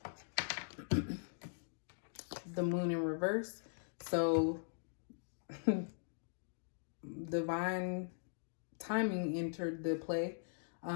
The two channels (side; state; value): right; silent; digital silence